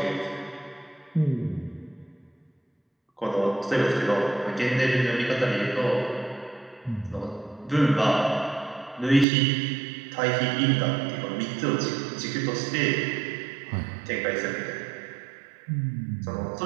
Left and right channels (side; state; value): left; drops out; at 9.2 s